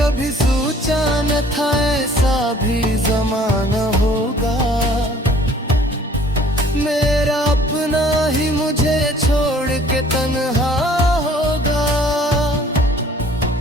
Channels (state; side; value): normal; both; correlation 0.55